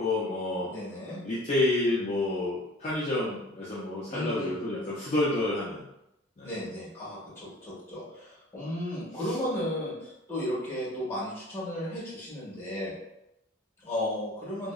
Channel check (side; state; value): both; normal; correlation 0.46